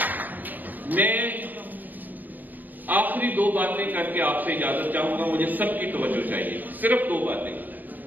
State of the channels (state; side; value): late; left; 0.086 ms